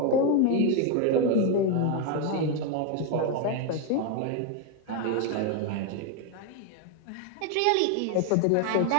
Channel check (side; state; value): both; different; correlation 0.02